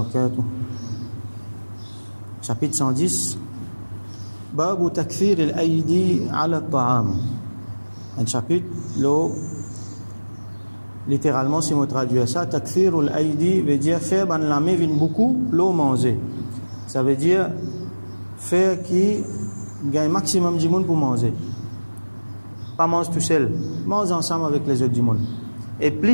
Chapitre 110 باب تكثير الأيدي على الطعام. Un chapitre littéralement, si on traduit ça, takthirul aidi veut dire faire ban la main vient beaucoup l'eau manger. Ça veut dire faire qui gagne maximum du monde pour manger. Pas manger tout seul, mange ensemble avec les autres du monde. Et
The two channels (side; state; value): both; inverted; correlation -1.00